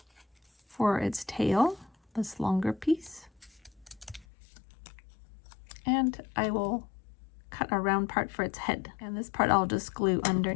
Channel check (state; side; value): drops out; right; at 4.2 s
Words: For its tail, this longer piece. And I will cut a round part for its head. And this part I'll just glue